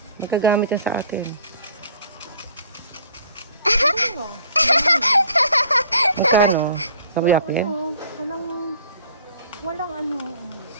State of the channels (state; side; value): inverted; both; correlation -0.53